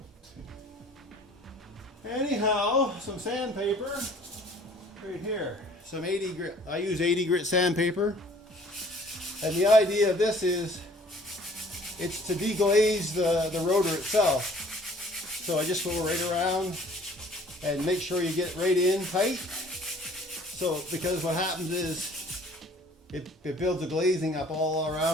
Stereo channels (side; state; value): both; normal; correlation 0.54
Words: Anyhow, some sandpaper right here. Some 80 grit, I use 80 grit sandpaper. And the idea of this is, it's to deglaze the rotor itself. So I just go right around and make sure you get right in tight. So, because what happens is it builds a glazing up all